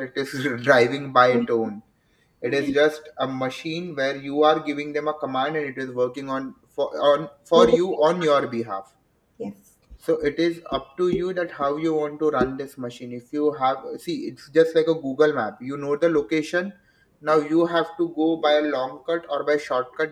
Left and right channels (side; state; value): both; identical; correlation 1.00